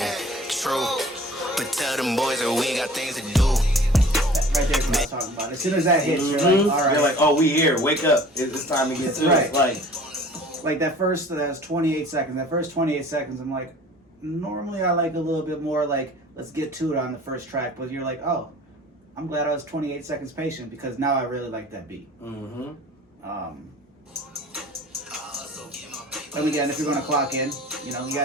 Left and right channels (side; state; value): both; normal; correlation 0.47